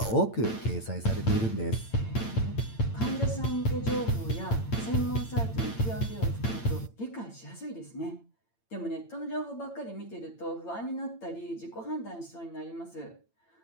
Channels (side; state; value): right; late; 8.8 ms